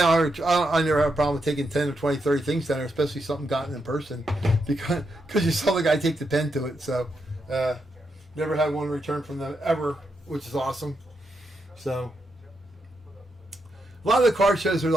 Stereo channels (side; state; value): both; normal; correlation 0.83